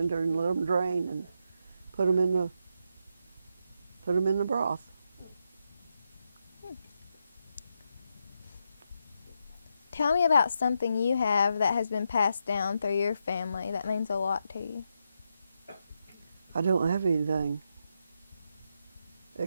and let them drain, and put them in the broth. Tell me about something you have that has been passed down through your family that means a lot to you. I don't have anything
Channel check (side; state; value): both; inverted; correlation -0.83